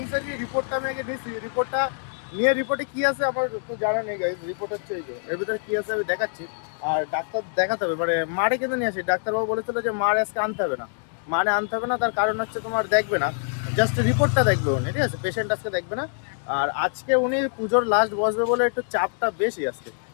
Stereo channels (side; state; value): right; silent; digital silence